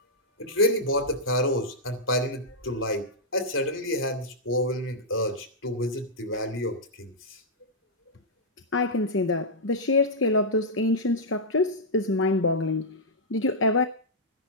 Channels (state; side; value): normal; both; correlation -0.08